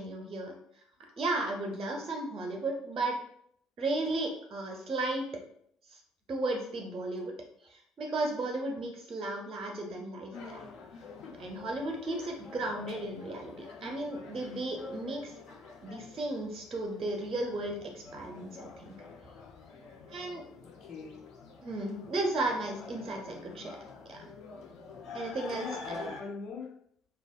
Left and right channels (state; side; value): normal; both; correlation 0.64